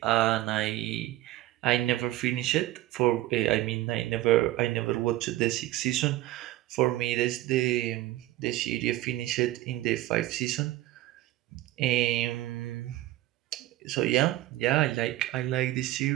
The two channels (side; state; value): left; quieter; 16.0 dB